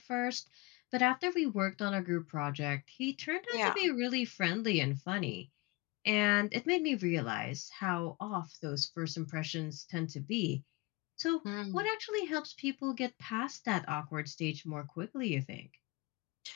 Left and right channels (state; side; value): quieter; right; 23.3 dB